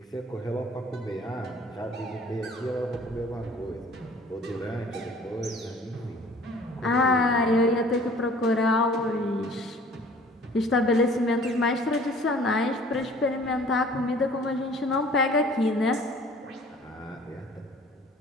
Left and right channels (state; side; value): normal; both; correlation 0.51